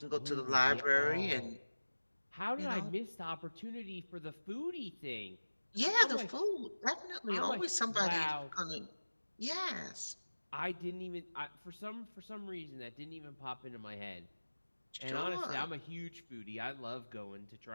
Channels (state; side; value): inverted; both; correlation -1.00